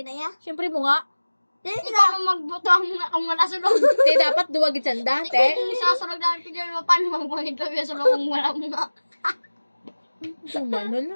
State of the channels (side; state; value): both; inverted; correlation -1.00